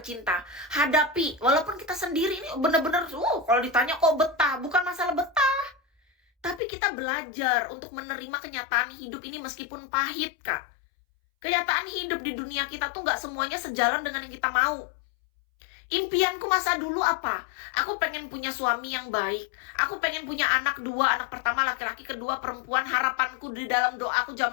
hadapi. Walaupun kita sendiri ini bener-bener kalau ditanya kok betah, bukan masalah betah, tapi kita belajar untuk menerima kenyataan hidup ini meskipun pahit Kak. Kenyataan hidup di dunia kita tuh gak semuanya sejalan dengan yang kita mau. Impianku masa dulu apa? Aku pengen punya suami yang baik. Aku pengen punya anak 2, anak pertama laki-laki, kedua perempuan. Harapanku di dalam doaku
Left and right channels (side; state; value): right; drops out; at 6.6 s